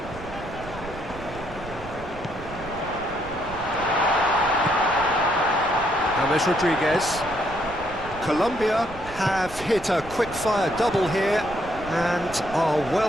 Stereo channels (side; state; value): right; noise; rumble, 15 dB below the sound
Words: James Rodriguez. Colombia have hit a quick-fire double here. and are